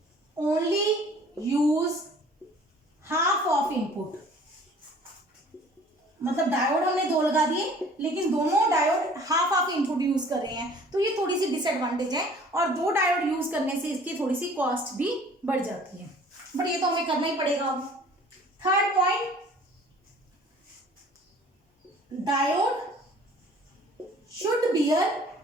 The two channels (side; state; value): both; normal; correlation 0.51